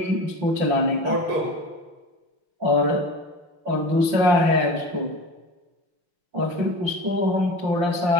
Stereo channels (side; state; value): left; late; 5.7 ms